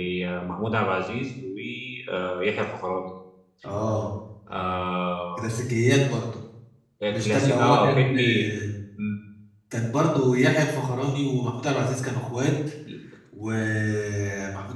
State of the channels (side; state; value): both; identical; correlation 1.00